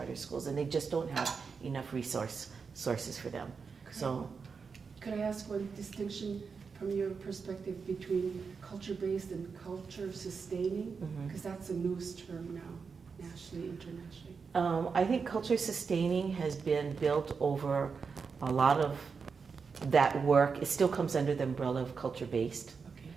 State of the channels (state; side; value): quieter; left; 5.4 dB